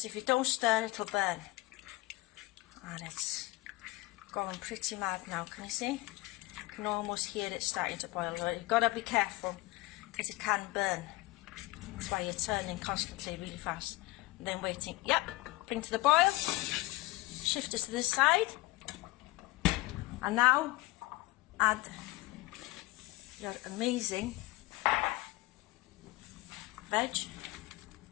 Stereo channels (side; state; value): right; quieter; 20.7 dB